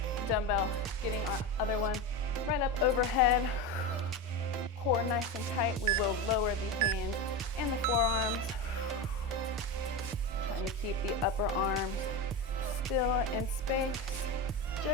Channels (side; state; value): both; normal; correlation 0.19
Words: dumbbell, getting our other one right up overhead. Core nice and tight. We will lower the hands and the forearms. Trying to keep the upper arms still in space,